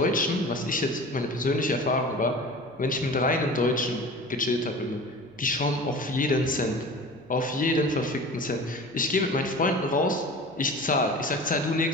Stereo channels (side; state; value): right; noise; hum, 29 dB below the sound